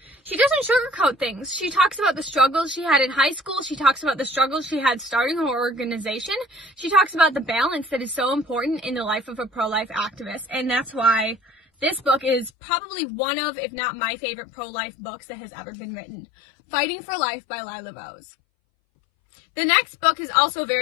She doesn't sugarcoat things. She talks about the struggles she had in high school. She talks about the struggles she had starting her organization. She talks about the balance that is so important in the life of a pro-life activist. And that's why this book is probably one of, if not my favorite pro-life books that has ever been written. Fighting for Life by Lila Rose. The next book is also a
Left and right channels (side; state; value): right; drops out; at 12.5 s